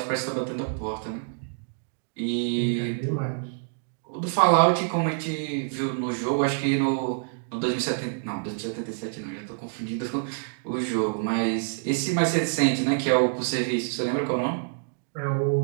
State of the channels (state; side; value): silent; left; digital silence